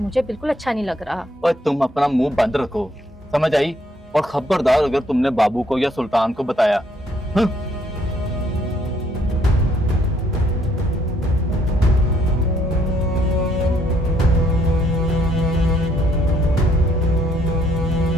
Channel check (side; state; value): both; normal; correlation 0.68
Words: बिल्कुल अच्छा नहीं लग रहा। और तुम अपना मुंह बंद रखो, समझ आई? और खबरदार अगर तुमने बाबू को या सुल्तान को बताया।